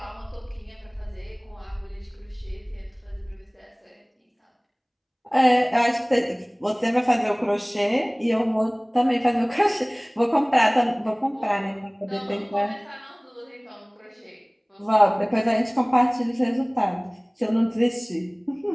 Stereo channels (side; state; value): both; identical; correlation 1.00